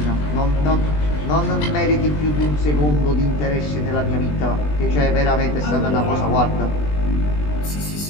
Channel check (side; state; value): right; late; 20 ms